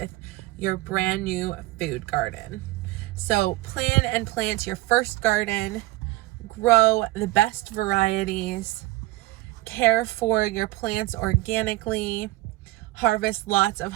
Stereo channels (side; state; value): left; quieter; 19.4 dB